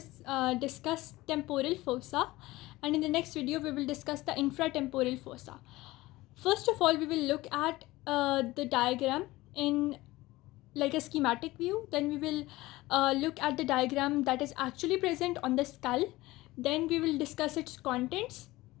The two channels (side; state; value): right; quieter; 18.9 dB